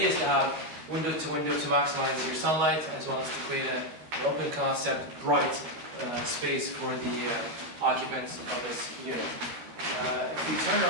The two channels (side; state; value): left; late; 13 ms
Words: is to have window to maximize your sunlight, as well as to create an open concept, bright space for the occupants of this unit. If you turn